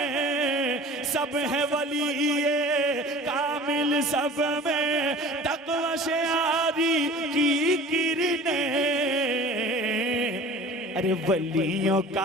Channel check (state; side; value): normal; both; correlation 0.42